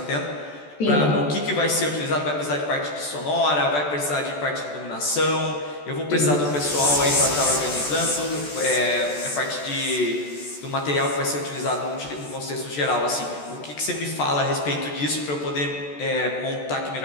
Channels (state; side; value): late; right; 14 ms